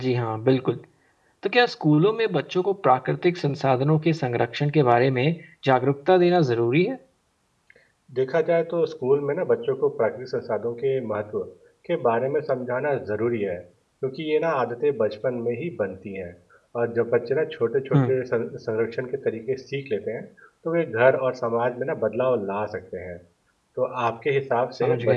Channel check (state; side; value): identical; both; correlation 1.00